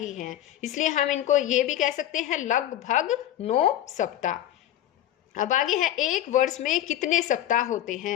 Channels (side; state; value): right; quieter; 12.5 dB